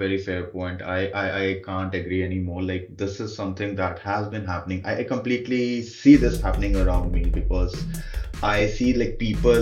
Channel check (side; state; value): both; identical; correlation 1.00